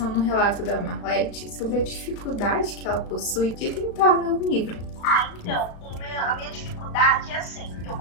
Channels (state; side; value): late; right; 36 ms